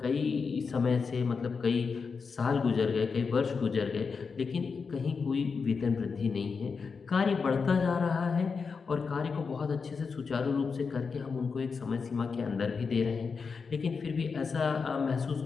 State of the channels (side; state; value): right; quieter; 5.2 dB